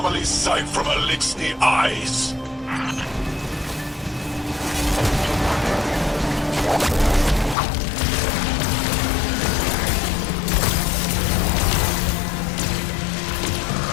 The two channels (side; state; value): right; drops out; at 7.6 s